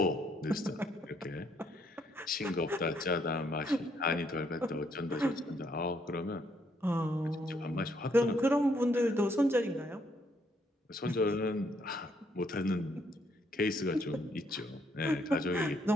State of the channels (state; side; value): normal; both; correlation 0.71